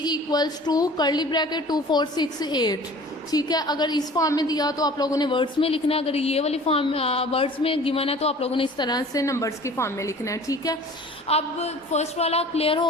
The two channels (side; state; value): both; normal; correlation 0.46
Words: इक्वल्स टू कर्ली ब्रैकेट 2 4 6 8, ठीक है। अगर इस फॉर्म में दिया तो आप लोगों ने वर्ड्स में लिखना है, अगर ये वाली फॉर्म वर्ड्स में गिवन है तो आप लोगों ने इस तरह से नंबर्स की फॉर्म में लिखना है, ठीक है। अब फर्स्ट वाला क्लियर